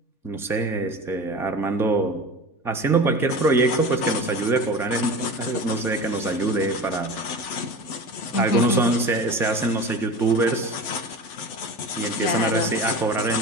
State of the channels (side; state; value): right; late; 3.5 ms